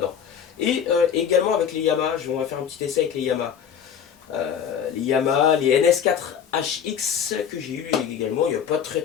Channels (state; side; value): quieter; right; 8.1 dB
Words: Et également avec les Yamaha, on va faire un petit essai avec les Yamaha. Les Yamaha, les NS4HX que j'ai eu également il n'y a pas très